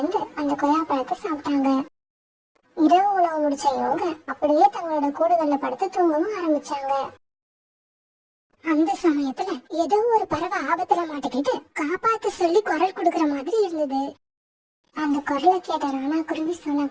அந்த கொய்யாப்பழத்தை சாப்பிட்டாங்க. இரவு உணவு முடிச்ச இவங்க அப்படியே தங்களோட கூடுகள்ல படுத்து தூங்கவும் ஆரம்பிச்சாங்க. அந்த சமயத்துல ஏதோ ஒரு பறவை ஆபத்துல மாட்டிக்கிட்டு காப்பாத்து சொல்லி குரல் கொடுக்கற மாதிரி இருந்தது. அந்த குரலை கேட்ட ராணா குருவி சோனா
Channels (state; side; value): identical; both; correlation 1.00